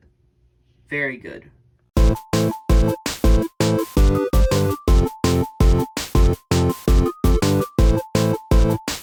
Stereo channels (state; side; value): identical; both; correlation 1.00